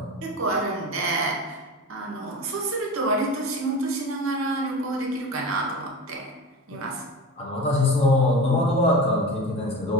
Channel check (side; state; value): both; normal; correlation 0.30